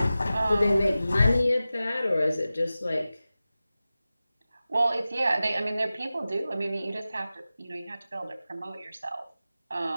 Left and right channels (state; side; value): inverted; both; correlation -0.95